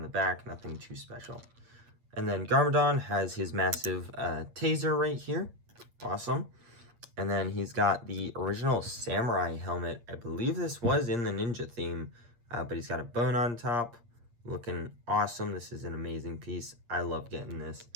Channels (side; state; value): left; late; 8.5 ms